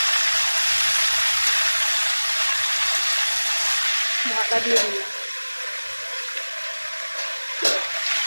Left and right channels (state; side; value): inverted; both; correlation -1.00